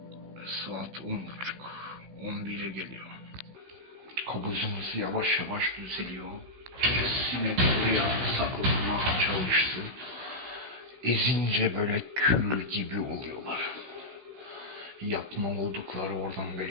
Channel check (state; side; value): late; left; 16 ms